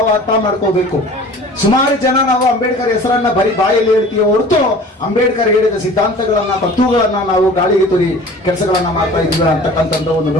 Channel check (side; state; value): both; normal; correlation 0.44